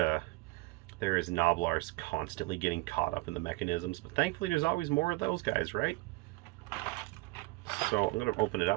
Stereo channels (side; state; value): left; quieter; 22.9 dB